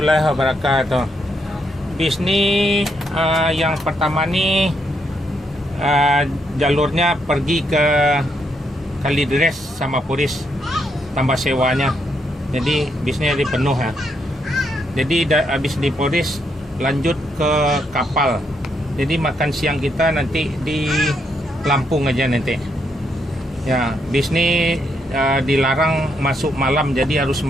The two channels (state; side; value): normal; both; correlation 0.77